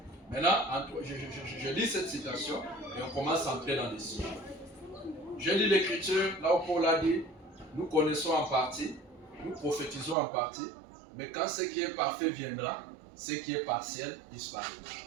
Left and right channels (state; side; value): drops out; left; at 10.2 s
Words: Maintenant, je lis cette citation et on commence à entrer dans les sujets. Je lis l'écriture, là où Paul a dit, nous connaissons en partie, nous prophétisons en partie, mais quand ce qui est parfait viendra, ce qui est partiel disparaîtra.